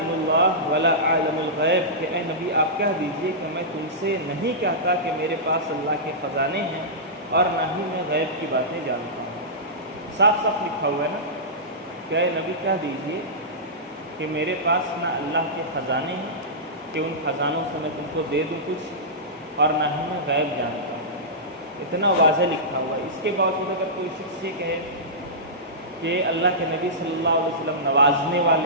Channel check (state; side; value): normal; both; correlation -0.16